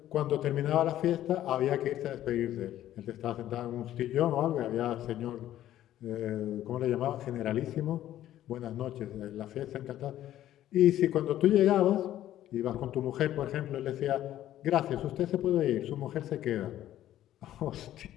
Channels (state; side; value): quieter; right; 12.7 dB